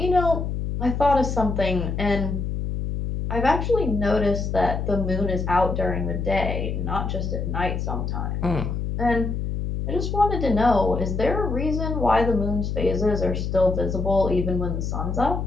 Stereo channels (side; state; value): left; noise; hum, 2 dB below the sound